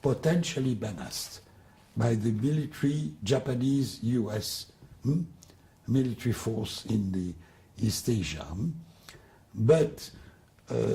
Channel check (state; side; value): identical; both; correlation 1.00